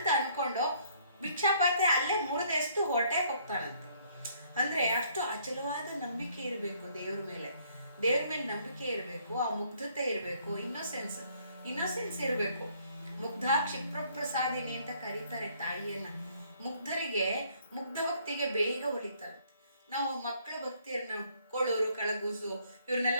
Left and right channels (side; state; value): both; inverted; correlation -0.64